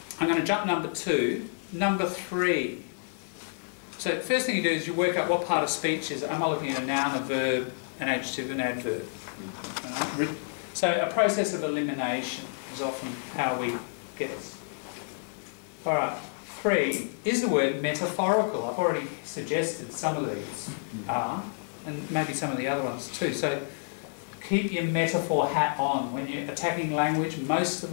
I'm going to jump number 2. Number 3. So the first thing you do is you work out what part of speech is it. Am I looking at a noun, a verb, an adjective, an adverb? So a process of elimination is often how we get this. All right. 3, is the word metaphorical? I've already suggested some of these are, and maybe some of the other ones too. So keep your metaphor hat on. When you're attacking language, most of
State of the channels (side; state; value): right; silent; digital silence